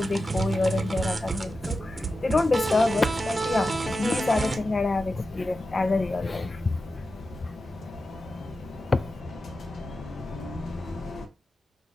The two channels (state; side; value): normal; both; correlation 0.92